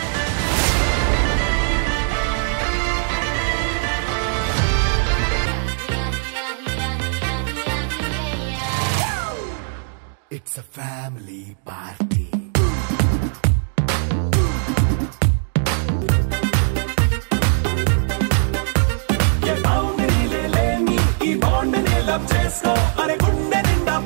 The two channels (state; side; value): silent; left; 66 dB below the other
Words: It's a family party. ये बाउंड्री ले लेनी ఈ బాండ్ ని లవ్ చేసుకో. అరే గుండె నిండా